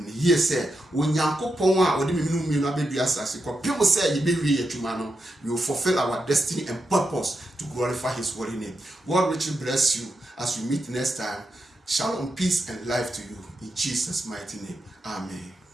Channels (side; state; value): both; normal; correlation 0.86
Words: yes, sir. When Yanko Poma or the Minu baby assassin, people say you be real to man, we will fulfill our destiny and purpose to glorify his holy name. God richly bless you as we meet next time. Shalom, peace, and life to you in Jesus' mighty name. Amen.